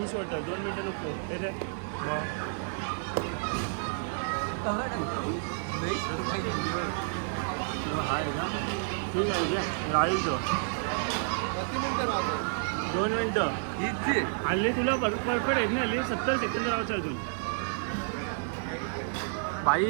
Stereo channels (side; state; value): left; silent; digital silence